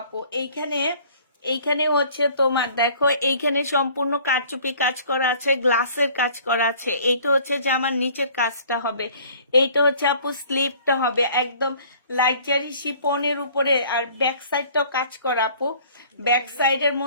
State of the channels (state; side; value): inverted; both; correlation -0.53